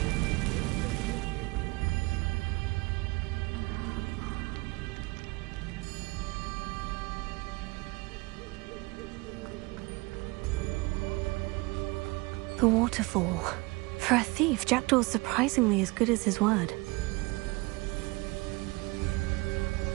The waterfall. For a thief, Jackdaw's surprisingly as good as his word.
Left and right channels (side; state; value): left; quieter; 24.8 dB